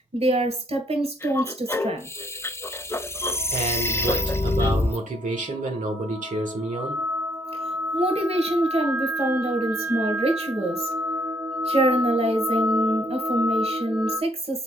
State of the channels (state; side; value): normal; both; correlation 0.68